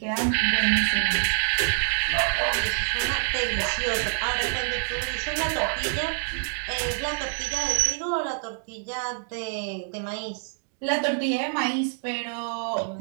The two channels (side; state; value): left; silent; digital silence